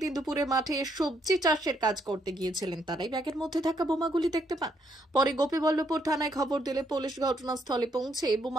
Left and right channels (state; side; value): normal; both; correlation 0.74